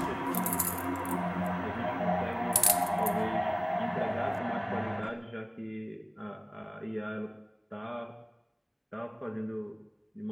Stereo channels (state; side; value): identical; both; correlation 1.00